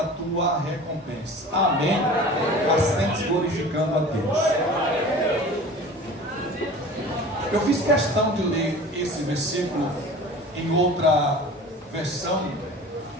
tua recompensa. Amém? Assim glorificando a Deus. Eu fiz questão de ler esse versículo em outra versão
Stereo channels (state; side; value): normal; both; correlation 0.40